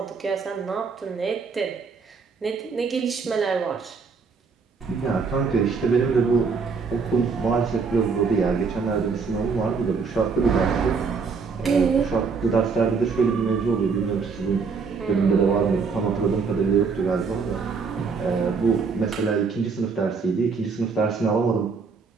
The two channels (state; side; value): quieter; left; 5.0 dB